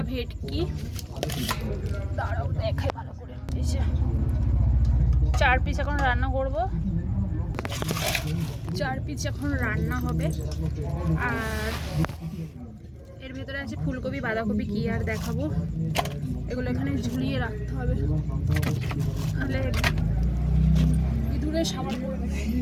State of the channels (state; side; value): identical; both; correlation 1.00